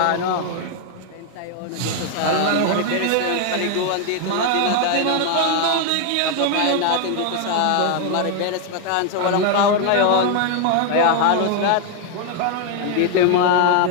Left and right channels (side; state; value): both; different; correlation 0.00